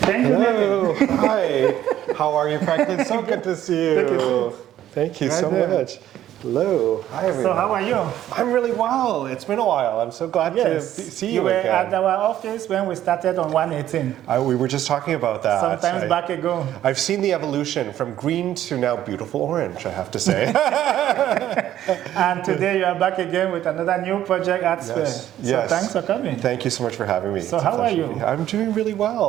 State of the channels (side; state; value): left; quieter; 12.2 dB